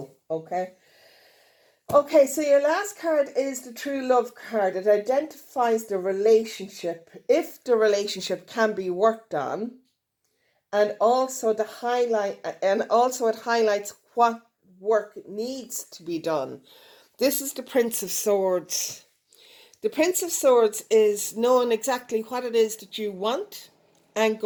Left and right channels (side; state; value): both; identical; correlation 1.00